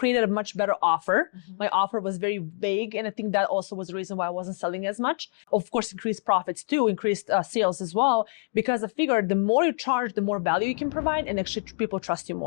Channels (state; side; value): silent; right; digital silence